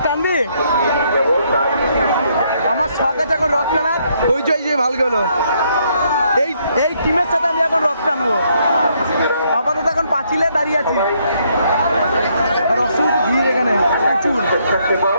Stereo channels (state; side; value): inverted; both; correlation -0.72